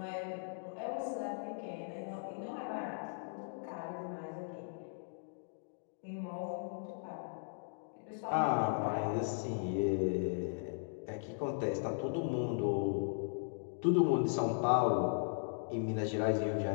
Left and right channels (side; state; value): right; silent; digital silence